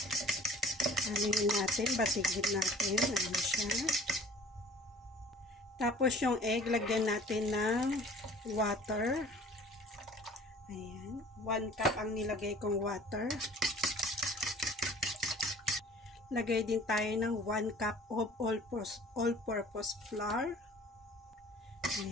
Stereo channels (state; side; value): normal; both; correlation 0.49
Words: Anuhin natin, batigin natin. Ayan siya. Tapos yung egg, lagyan natin ng water. Ayan. 1 cup ang nilagay kong water. Lagay din tayo ng 1 cup of all-purpose flour.